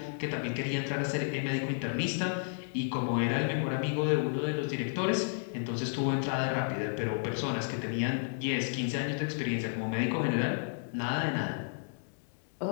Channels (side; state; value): right; silent; digital silence